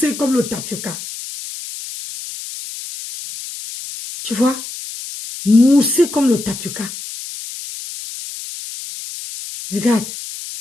comme le tapioca. Tu vois? Mousser comme le tapioca. Regarde,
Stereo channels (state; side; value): noise; left; hiss, 11 dB below the sound